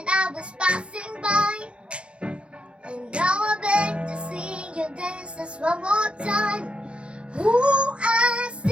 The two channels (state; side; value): late; left; 0.058 ms